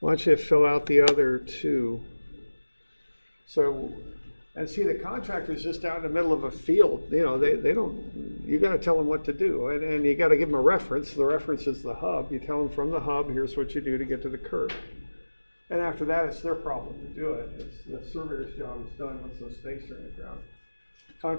don't you fill out the other two? So, and see, the contractor's just out in the middle of a field. You know, they don't, you got to tell them what to do. And you got to give them a reference. The reference is the hub. You tell them from the hub, here's what you do to get to the curb. And after that, it's their problem to do it. It's the surveyor's job is done once those stakes are in the ground. The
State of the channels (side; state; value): both; inverted; correlation -1.00